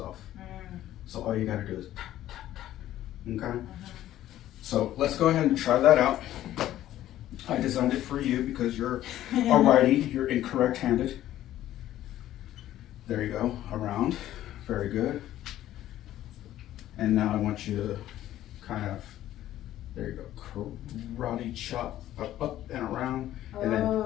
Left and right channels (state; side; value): quieter; right; 13.2 dB